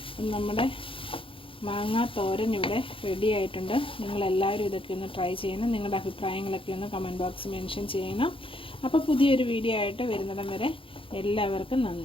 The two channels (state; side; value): late; right; 0.26 ms